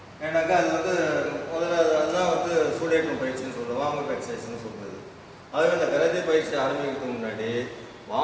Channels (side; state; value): both; identical; correlation 1.00